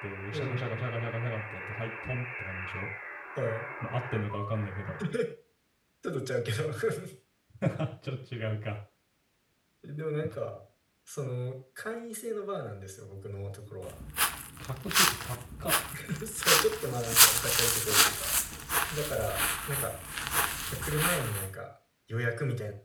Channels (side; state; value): both; identical; correlation 1.00